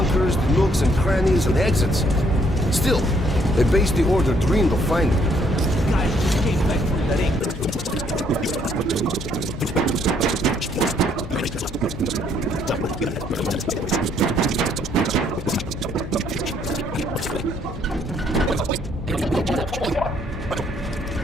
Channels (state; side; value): normal; both; correlation 0.68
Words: the nooks and crannies and exits. Still, they base the order dreamed of finding. Guys just came back from the ring.